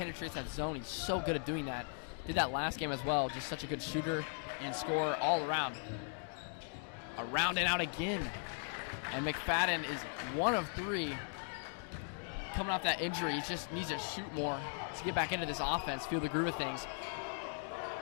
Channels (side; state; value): right; silent; 52 dB below the other